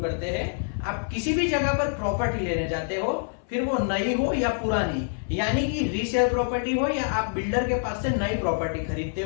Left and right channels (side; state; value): right; silent; 61 dB below the other